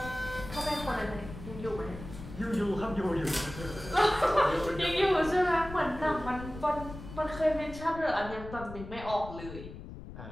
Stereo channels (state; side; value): noise; left; rumble, 12 dB below the sound